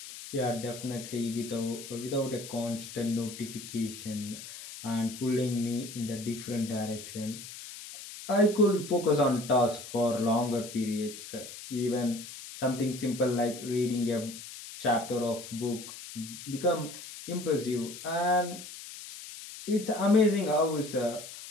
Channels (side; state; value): left; noise; hiss, 12 dB below the sound